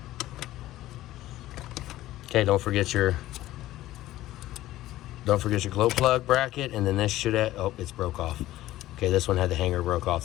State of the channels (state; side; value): quieter; right; 15.3 dB